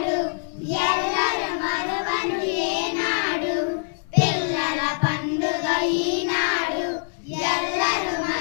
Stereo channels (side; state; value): right; silent; digital silence